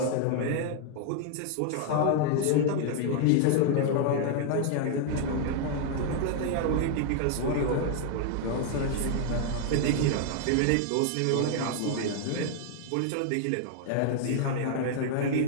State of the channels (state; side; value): different; both; correlation 0.00